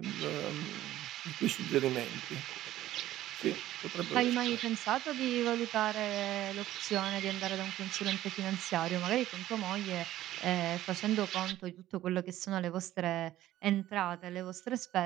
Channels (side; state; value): left; quieter; 14.0 dB